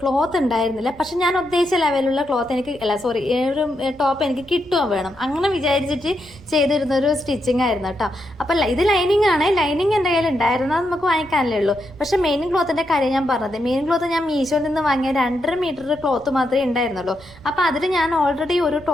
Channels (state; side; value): noise; right; rumble, 23 dB below the sound